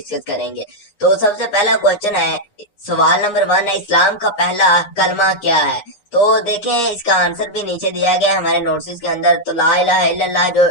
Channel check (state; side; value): late; right; 9.7 ms